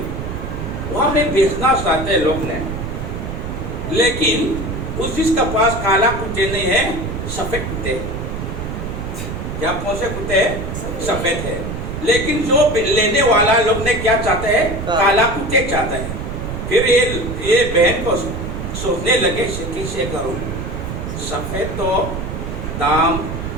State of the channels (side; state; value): right; noise; rumble, 5 dB below the sound